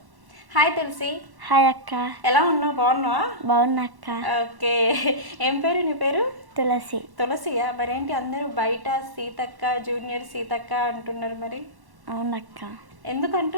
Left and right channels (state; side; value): late; left; 1.1 ms